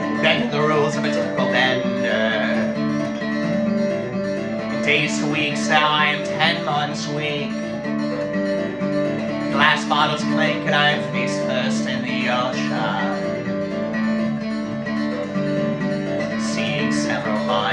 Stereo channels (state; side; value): identical; both; correlation 1.00